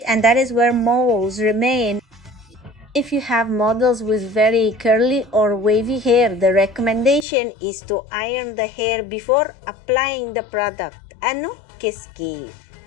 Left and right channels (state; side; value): drops out; right; at 7.2 s